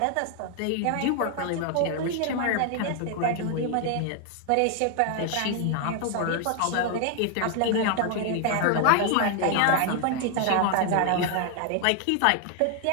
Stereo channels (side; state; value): both; different; correlation 0.00